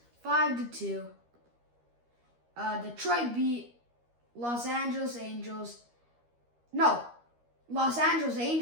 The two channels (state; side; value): late; left; 13 ms